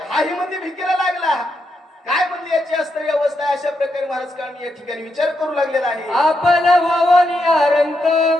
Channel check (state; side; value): normal; both; correlation 0.82